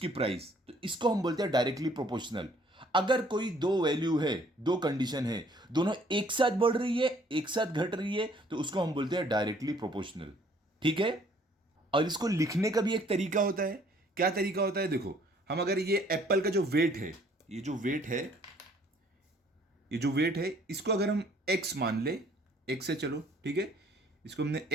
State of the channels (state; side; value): normal; both; correlation 0.60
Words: प्राइस। तो इसको हम बोलते हैं डायरेक्टली प्रोपोर्शनल। अगर कोई दो वैल्यू है, दो कंडीशन है, दोनों एक साथ बढ़ रही है एक साथ घट रही है, तो उसको हम बोलते हैं डायरेक्टली प्रोपोर्शनल। ठीक है, और इसको लिखने का भी एक तरीका होता है। क्या तरीका होता है, देखो हम अगर ये एप्पल का जो वेट है, ये जो वेट है, ये जो वेट है, इसको अगर हम x मान ले, x से चलो, ठीक है, इसको हमने